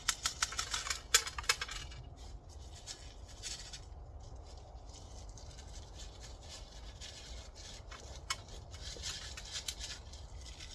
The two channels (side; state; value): both; identical; correlation 1.00